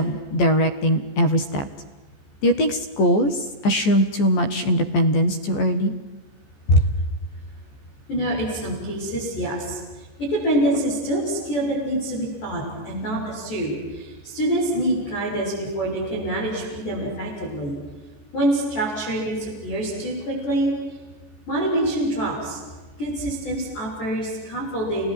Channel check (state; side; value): late; right; 14 ms